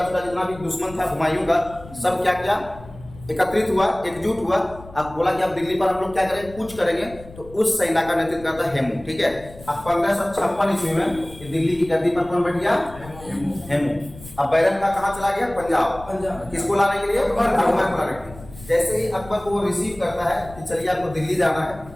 छोटा जितना भी दुश्मन था हुमायूं का सब क्या किया? एकत्रित हुआ, एकजुट हुआ। अब बोला कि अब दिल्ली पर हम लोग क्या करेंगे? कूच करेंगे। तो उस सेना का नेतृत्व करता हेमू। ठीक है, अब 1556 ईस्वी में दिल्ली की गद्दी पर कौन बैठ गया? हेमू। अब बैरम खां कहाँ चला गया? पंजाब। किसको लाने के लिए? अकबर को लाने के लिए। जैसे ही अकबर को वो रिसीव करता है कि चलिए आपको दिल्ली जाना है,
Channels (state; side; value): noise; left; rumble, 18 dB below the sound